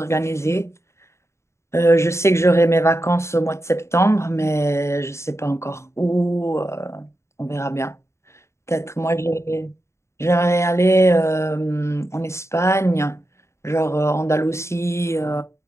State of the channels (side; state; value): right; late; 0.13 ms